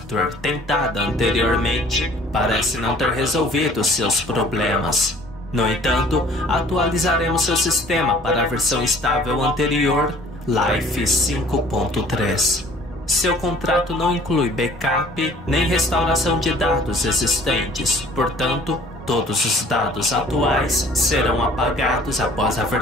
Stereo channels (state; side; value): normal; both; correlation 0.52